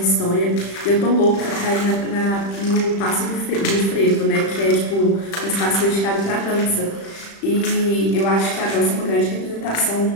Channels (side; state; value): right; late; 35 ms